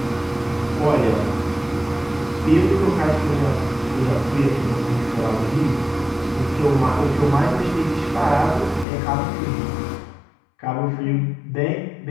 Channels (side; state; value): right; drops out; at 8.8 s